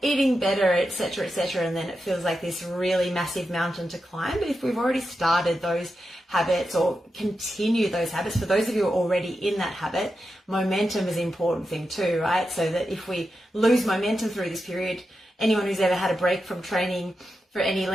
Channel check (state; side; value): normal; both; correlation 0.89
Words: eating better, etc., etc. And then it feels like this really massive mountain to climb. But if we've already started those habits or continue those habits, for those of you who are already in that habit, momentum is an important thing too, right? So that if we lose momentum through this period, anyone who's ever had a break from training for any